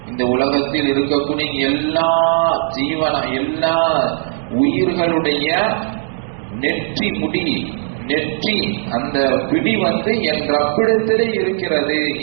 இந்த உலகத்தில் இருக்கக்கூடிய எல்லா எல்லா உயிர்களுடைய நெற்றி முடி நெற்றி அந்த பிடி என் ரப்பிடத்திலே இருக்கிறது.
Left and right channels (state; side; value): silent; left; 60 dB below the other